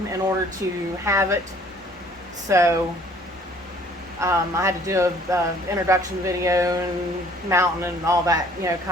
in order to have it. So I had to do a introduction video and mounting and all that, you know,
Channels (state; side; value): normal; both; correlation 0.57